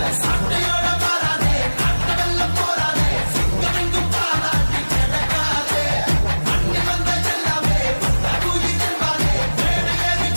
சட்டையோட மாறாதே கட்ட வெள்ளம் போராதே சிங்கமெங்கும் பாராட்டி கிடக்காதே. அண்ணி வந்த எல்லாமே உயிர் செல்வாதே மேடை ஏறி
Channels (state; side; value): inverted; both; correlation -1.00